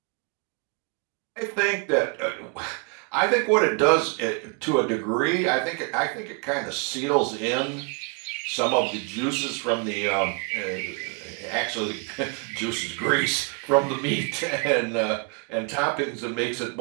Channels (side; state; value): left; quieter; 35.9 dB